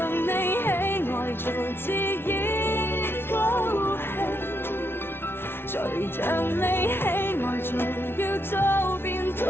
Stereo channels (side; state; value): right; late; 0.11 ms